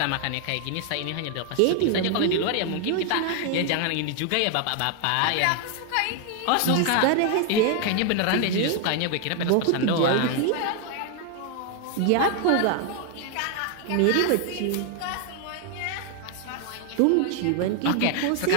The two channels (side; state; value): both; different; correlation 0.00